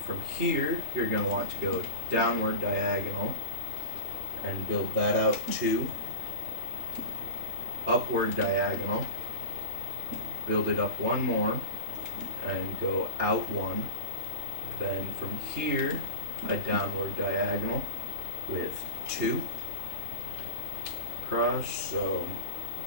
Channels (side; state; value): left; late; 3.3 ms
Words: from here, you're going to want to go downward diagonal and build that out 2. Upward diagonal, build it up 1 more and go out 1. Then from here, a downward diagonal with 2. Cross. So